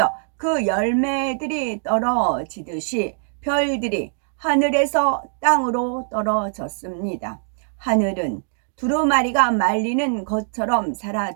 그 열매들이 떨어지듯이 별들이 하늘에서 땅으로 떨어졌습니다. 하늘은 두루마리가 말리는 것처럼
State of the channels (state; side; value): silent; left; 64 dB below the other